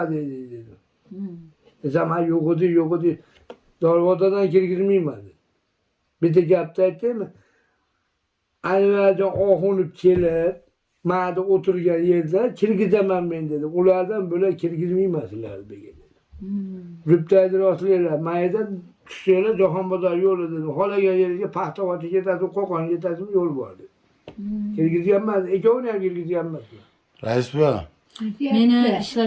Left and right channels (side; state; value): both; identical; correlation 1.00